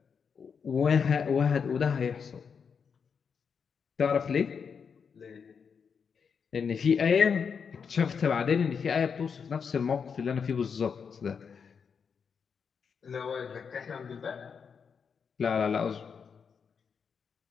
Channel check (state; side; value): quieter; right; 6.3 dB